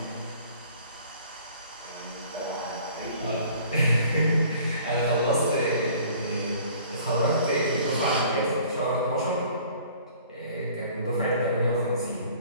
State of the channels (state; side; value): inverted; both; correlation -0.52